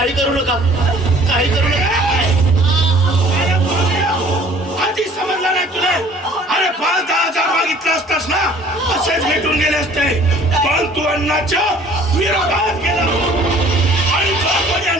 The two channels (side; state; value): both; normal; correlation 0.52